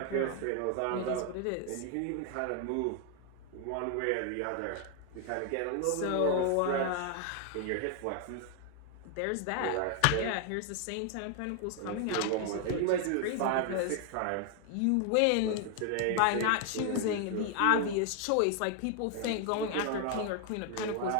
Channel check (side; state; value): both; different; correlation 0.00